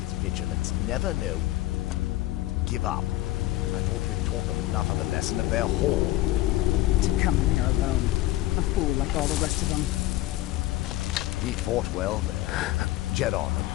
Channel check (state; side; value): quieter; right; 16.2 dB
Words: Vigilants never know. Give up. I thought we'd taught them enough of a lesson of their hall. To come in here alone. A fool like all the rest of them. We fought well there. Jet on and